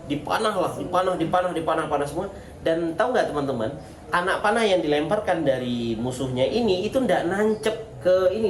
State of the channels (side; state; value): both; identical; correlation 1.00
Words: dipanah semua. Dan tahu nggak teman-teman, anak panah yang dilemparkan dari musuhnya ini itu ndak nancep ke